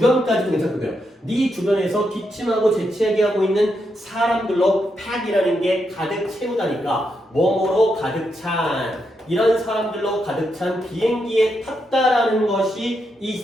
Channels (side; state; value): both; normal; correlation 0.82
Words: 괜찮고요. 네 주변에서 기침하고 재채기하고 있는 사람들로 pack이라는 게 가득 채우다니까 뭐뭐로 가득 찬 이런 사람들로 가득 찬 비행기에 탔다라는 것이